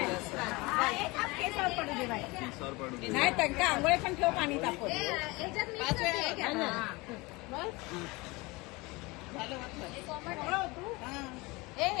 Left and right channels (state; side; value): quieter; right; 24.1 dB